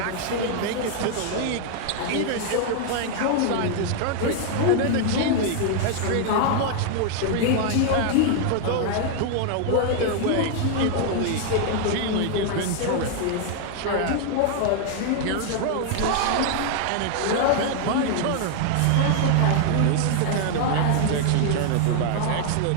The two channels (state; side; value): different; both; correlation 0.00